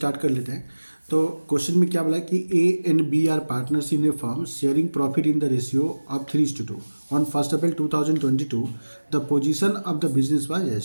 कर लेते हैं। तो क्वेश्चन में क्या बोला है कि A and B are partners in a firm sharing profit in the ratio of 3:2 on 1 April 2022। The position of the business was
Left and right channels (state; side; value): inverted; both; correlation -1.00